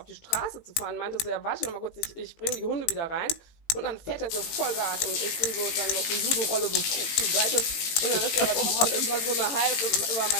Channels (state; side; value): late; right; 18 ms